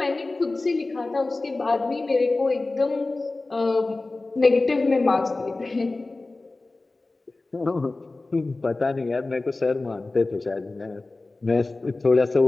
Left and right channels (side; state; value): right; quieter; 3.2 dB